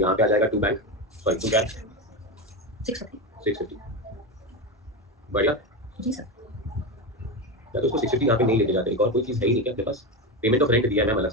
पे आ जाएगा to bank, sorry to cash 650। बढ़िया। जी सर। या तो उसको 650 यहाँ पे नहीं लेके जाते। एक और कोई चीज़ है ही नहीं क्या आपके पास? पेमेंट ऑफ रेंट दिया है मैम अलग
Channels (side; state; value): both; normal; correlation 0.16